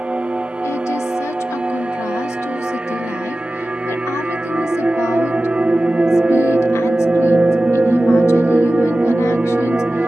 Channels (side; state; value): both; normal; correlation 0.95